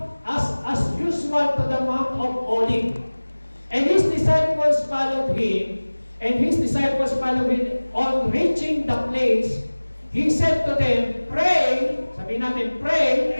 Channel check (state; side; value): inverted; both; correlation -1.00